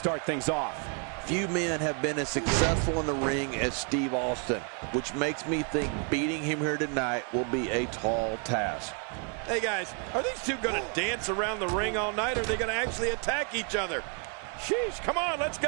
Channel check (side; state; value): left; quieter; 37.5 dB